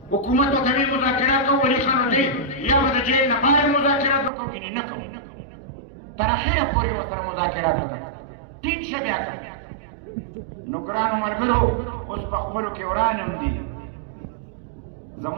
حکومت ورته ویل مذاکرات کوو ولي خان ورته یا به د جیل نه بهر مذاکرات به کوو ګینې نه کوو تر اخره پورې ورسره مذاکرات وکړه ټینګ شه بیا نو ګرانو ملګرو اوس په خپلو کې وران هم دي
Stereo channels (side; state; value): left; drops out; at 4.3 s